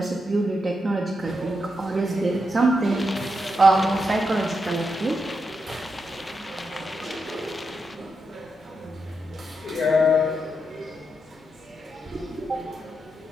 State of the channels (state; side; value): normal; both; correlation 0.84